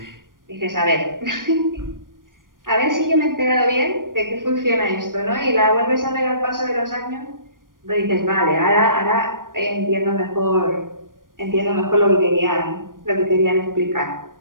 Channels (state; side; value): late; left; 0.90 ms